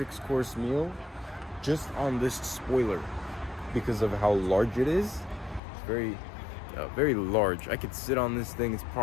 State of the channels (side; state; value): right; drops out; at 5.6 s